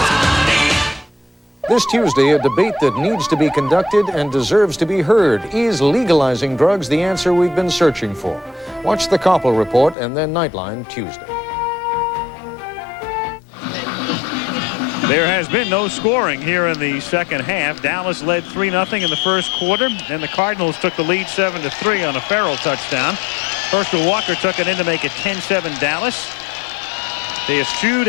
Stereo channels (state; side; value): drops out; right; at 10.0 s